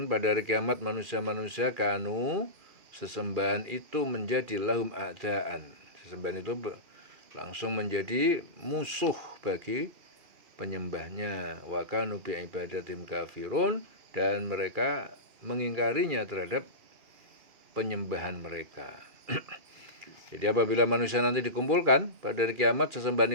pada hari kiamat manusia-manusia, kanu, sesembahan itu menjadi lahum a'daan, sesembahan itu langsung menjadi musuh bagi penyembahnya. Wa kanu bi ibadatim kafirun, dan mereka mengingkarinya terhadap penyembahan mereka. Jadi apabila manusia nanti dikumpulkan pada hari kiamat, sesembahan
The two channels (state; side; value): late; left; 2.4 ms